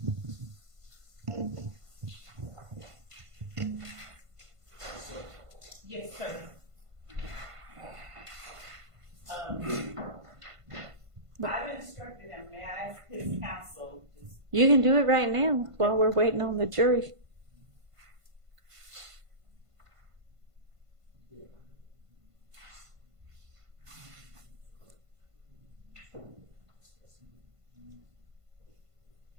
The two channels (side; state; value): left; late; 1.5 ms